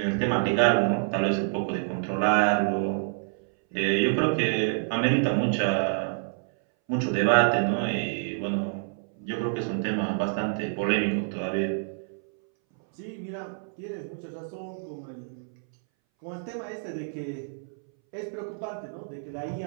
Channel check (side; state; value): left; silent; 60 dB below the other